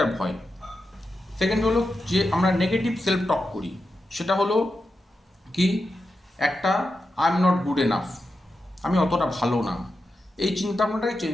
ভয়। সেকেন্ড হলো যে আমরা নেগেটিভ সেলফ টক করি, সেটা হলো কি, একটা I am not good enough, আমি অতটা ভালো না। এই চিন্তা ভাবনাটাকে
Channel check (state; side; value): normal; both; correlation 0.89